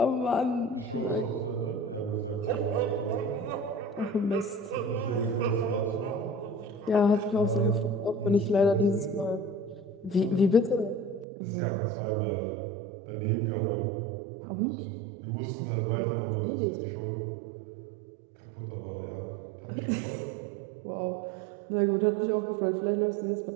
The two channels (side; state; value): left; drops out; at 11.2 s